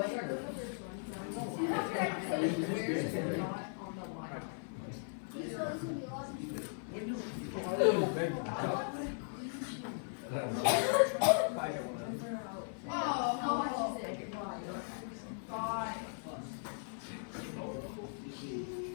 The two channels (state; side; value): silent; right; 53 dB below the other